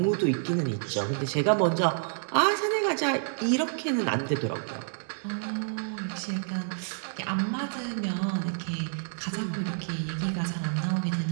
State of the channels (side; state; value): left; silent; digital silence